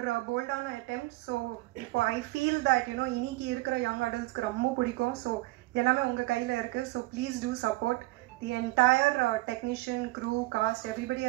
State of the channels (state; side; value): quieter; left; 20.2 dB